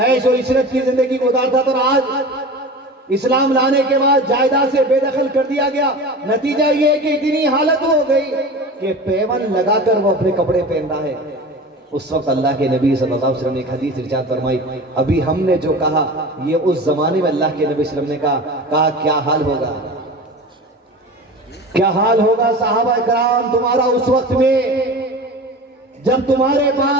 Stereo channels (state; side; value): normal; both; correlation 0.34